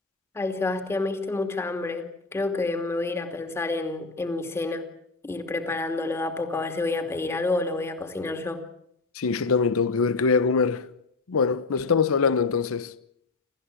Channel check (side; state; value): right; quieter; 3.8 dB